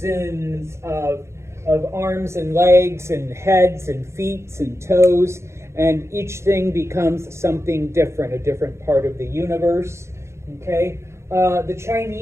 of arms and legs and heads and feet and toes, and each thing becomes something different, a different part of the universe, okay? The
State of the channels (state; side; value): late; left; 0.13 ms